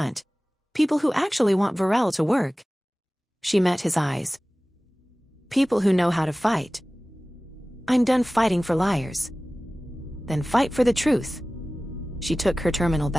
People who actually want Virelle to work." She met his eyes. "People who know how to fight." "I'm done fighting for liars." "Then fight for the truth." She took her terminal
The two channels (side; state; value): both; normal; correlation 0.97